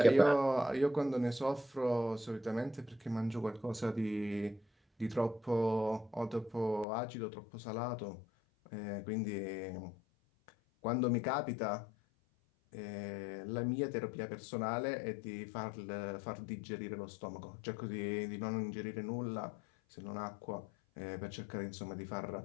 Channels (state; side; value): drops out; right; at 6.9 s